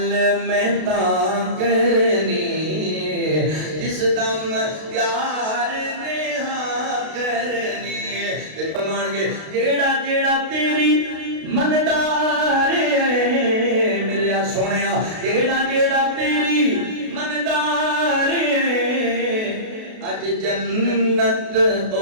میں تا کرنی جس دم یار نے ہاں کرنی فرمان گے جیڑا جیڑا تیری مندار ہے میرے سونیا جیڑا جیڑا تیری مندار ہے اج جنت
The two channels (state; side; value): late; left; 32 ms